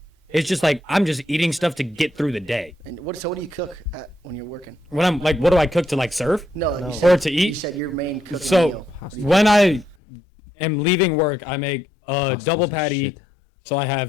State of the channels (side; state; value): right; drops out; at 10.0 s